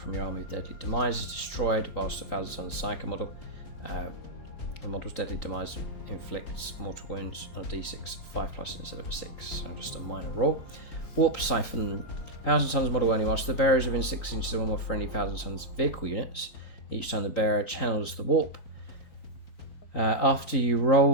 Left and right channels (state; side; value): late; right; 3.9 ms